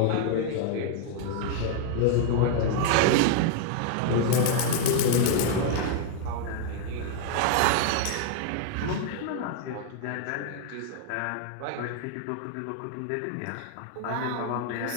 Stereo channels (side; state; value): both; different; correlation 0.00